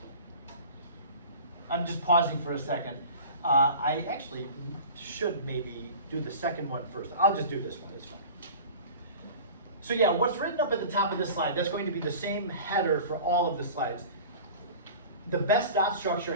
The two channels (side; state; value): both; inverted; correlation -0.39